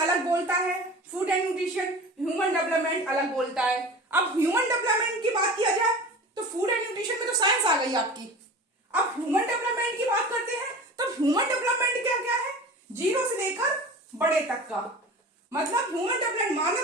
बोलता है food and nutrition, human development अलग बोलता है। अब ह्यूमन डेवलपमेंट की बात किया जाए तो फूड एंड न्यूट्रिशन में तो साइंस आ गई आपकी। अब ह्यूमन डेवलपमेंट की बात करते हैं तो ह्यूमन डेवलपमेंट क्या क्या है, 0 से लेकर बड़े तक का, मतलब ह्यूमन डेवलपमेंट मानव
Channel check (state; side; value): normal; both; correlation 0.36